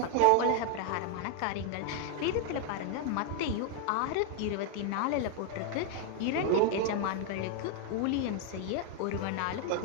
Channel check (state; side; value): different; both; correlation 0.01